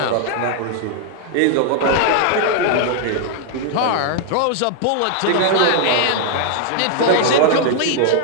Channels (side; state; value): both; different; correlation 0.00